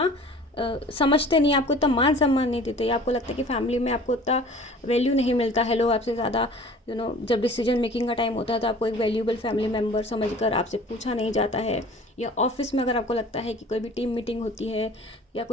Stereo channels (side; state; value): both; normal; correlation 0.46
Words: समझते नहीं, आपको इतना मान सम्मान नहीं देते, या आपको लगता है कि फैमिली में आपको इतना वैल्यू नहीं मिलता है, लोग आपसे ज़्यादा जब डिसीजन मेकिंग का टाइम होता है तो आपको एक वैल्यूबल फैमिली मेम्बर समझकर आपसे पूछा नहीं जाता है, या ऑफिस में अगर आपको लगता है कि कोई भी टीम मीटिंग होती है या